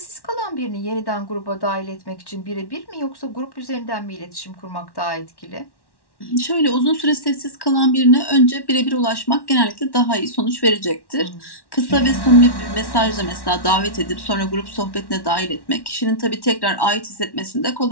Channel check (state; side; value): late; right; 1.1 ms